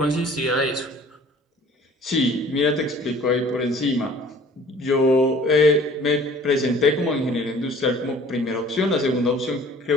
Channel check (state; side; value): normal; both; correlation 0.51